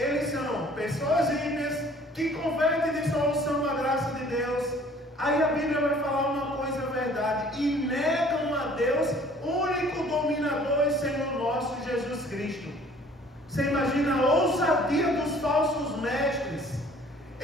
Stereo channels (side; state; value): both; normal; correlation 0.54